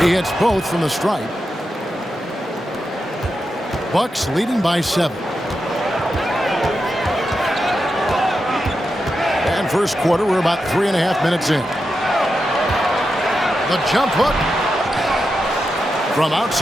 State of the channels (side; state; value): both; normal; correlation 0.88